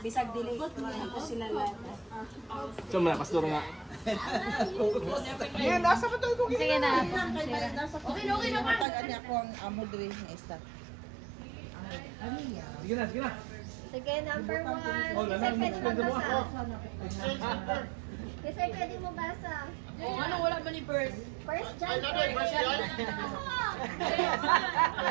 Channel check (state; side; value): drops out; left; at 8.8 s